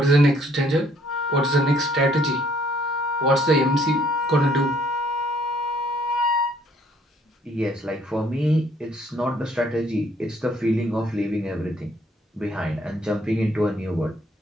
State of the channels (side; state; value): both; normal; correlation 0.64